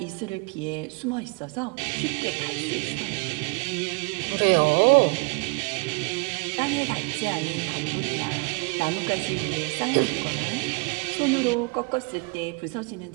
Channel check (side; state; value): left; quieter; 31.8 dB